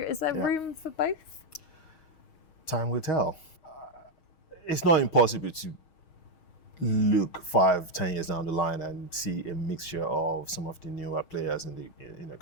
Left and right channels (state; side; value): late; right; 6.4 ms